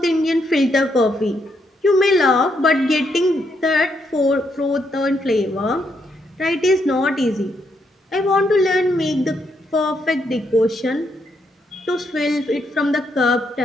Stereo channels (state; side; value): normal; both; correlation 0.77